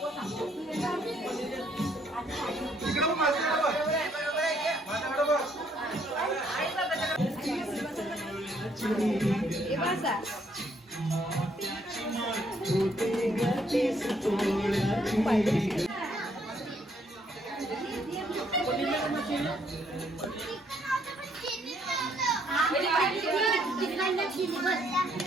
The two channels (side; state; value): both; normal; correlation 0.69